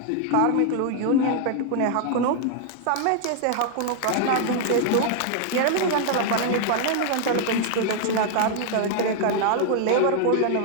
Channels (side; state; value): both; different; correlation 0.00